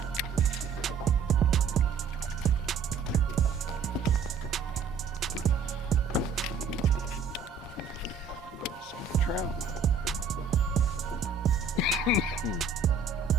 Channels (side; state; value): left; quieter; 5.3 dB